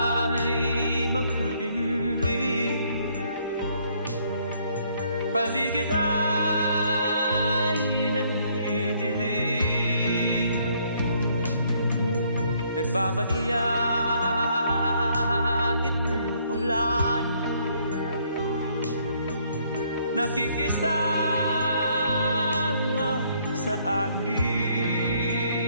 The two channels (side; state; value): both; inverted; correlation -0.67